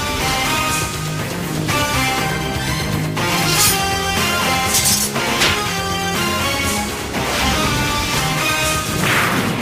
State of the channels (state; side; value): identical; both; correlation 1.00